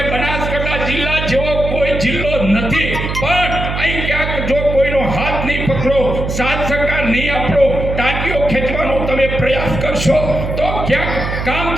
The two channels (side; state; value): right; noise; hum, 4 dB below the sound